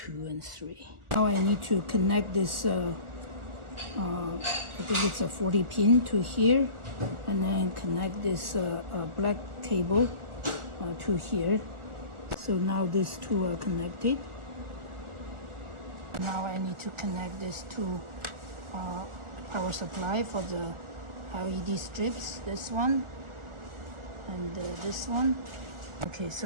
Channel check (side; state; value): left; late; 1.4 ms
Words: and 3. Now I need to connect this. I think it's a 40 pin to here, and then connect this black cable to here. So now these 2 are connected. Now I need to connect this to power supply for the LED strips, this one and this one. Okay,